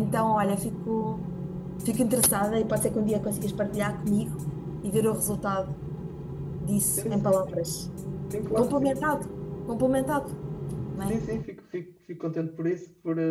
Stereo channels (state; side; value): identical; both; correlation 1.00